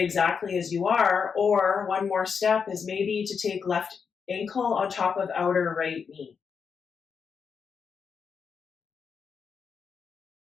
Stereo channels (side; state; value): right; quieter; 6.2 dB